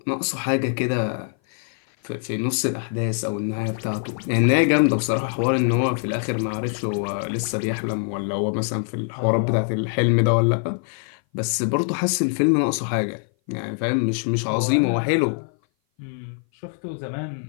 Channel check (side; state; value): right; silent; 58 dB below the other